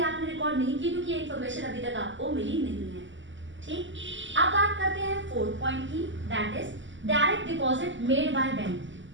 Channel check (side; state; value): left; late; 0.54 ms